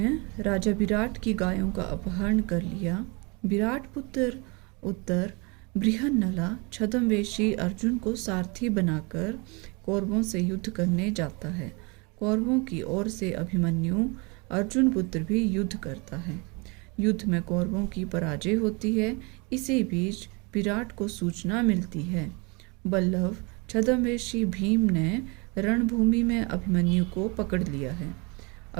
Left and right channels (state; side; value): quieter; left; 29.6 dB